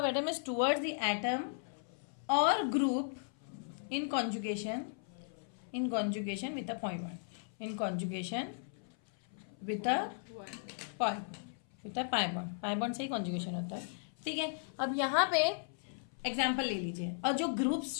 atom is towards the atom और group in conjugation with a point one, in conjugation with a pi bond से ही conjugation होता है। ठीक है, अब यहाँ पे एग्जाम्पल ले लीजिए, और जो ग्रुप्स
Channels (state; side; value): silent; right; 54 dB below the other